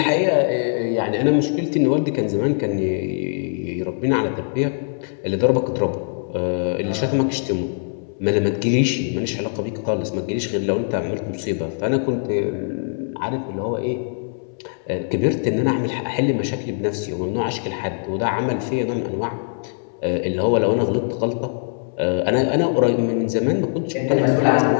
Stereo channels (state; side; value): silent; right; 64 dB below the other